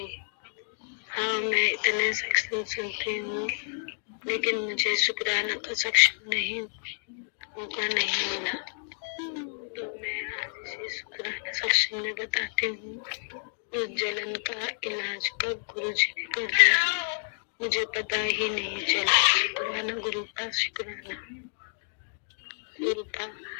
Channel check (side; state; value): right; silent; digital silence